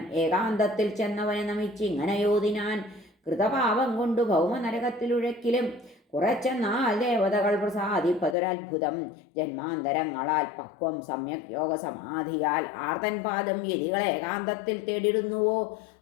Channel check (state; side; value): drops out; right; at 8.3 s